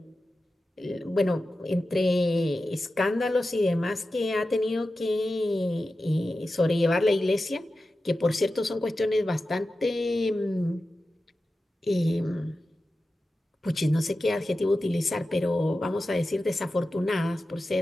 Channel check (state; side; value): normal; both; correlation 0.93